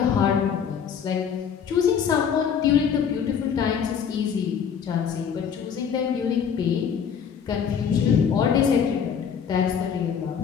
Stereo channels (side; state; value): right; quieter; 7.4 dB